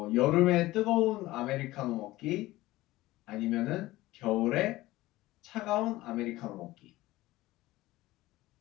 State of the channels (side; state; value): right; quieter; 17.9 dB